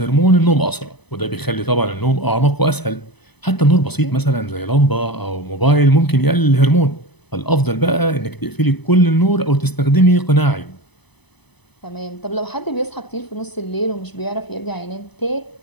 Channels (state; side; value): late; right; 0.99 ms